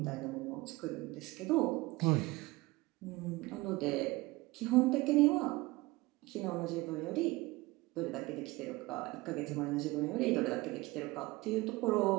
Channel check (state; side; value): quieter; left; 21.6 dB